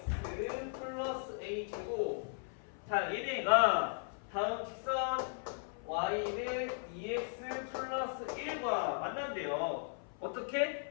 플러스 a제곱. 자, 얘네가 다음 직선 y는 2x 플러스 1과 만난대요.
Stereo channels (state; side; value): silent; right; 53 dB below the other